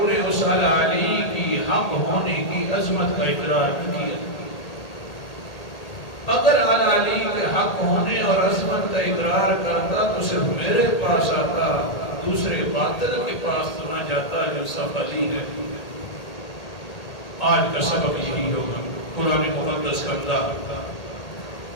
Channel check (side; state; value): right; late; 1.8 ms